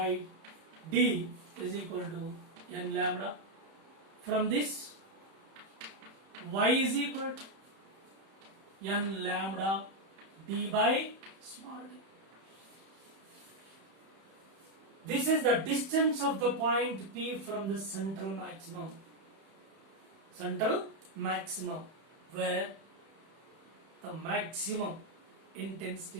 d is equal to n lambda. From this, y is equal to n lambda d by small d. This is the distance of the point P from the central maximum. Central maximum, where the maximum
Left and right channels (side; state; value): left; late; 31 ms